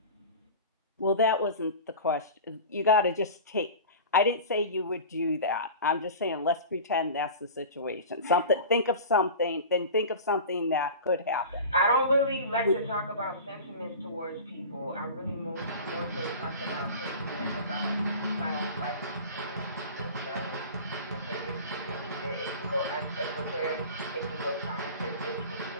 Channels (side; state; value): both; inverted; correlation -0.35